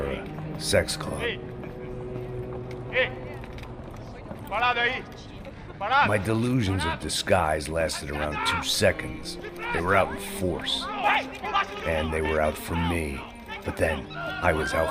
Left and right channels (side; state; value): both; identical; correlation 1.00